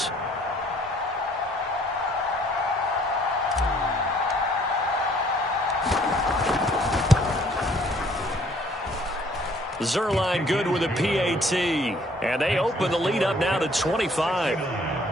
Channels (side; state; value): both; normal; correlation 0.60